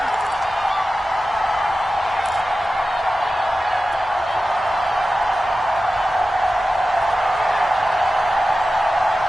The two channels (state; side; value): normal; both; correlation 0.94